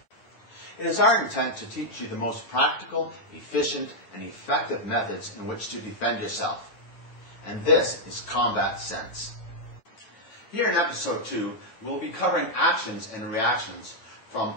It is our intent to teach you the most practical, efficient, and effective methods in which to defend yourself. And this is Combat Sense. Here in episode 2, we'll be covering actions and reactions from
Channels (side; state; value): right; late; 9.1 ms